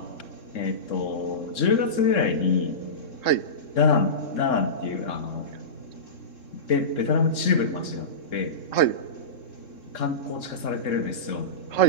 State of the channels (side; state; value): right; late; 3.7 ms